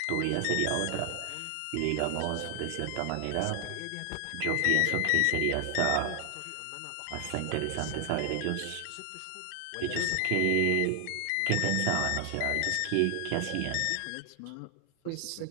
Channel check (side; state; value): both; different; correlation 0.00